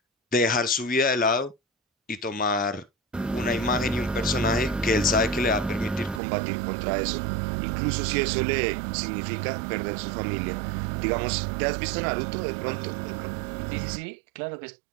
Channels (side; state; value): left; drops out; at 6.2 s